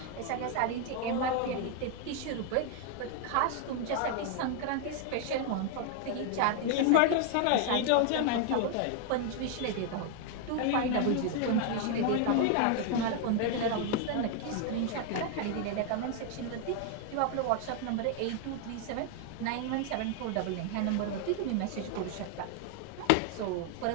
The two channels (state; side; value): different; both; correlation 0.00